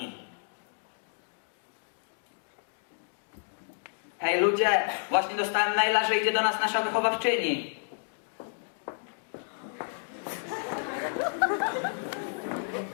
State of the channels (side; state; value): right; silent; digital silence